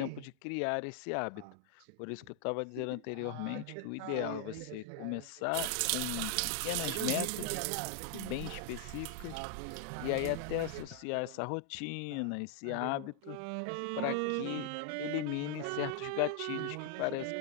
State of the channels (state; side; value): different; both; correlation 0.00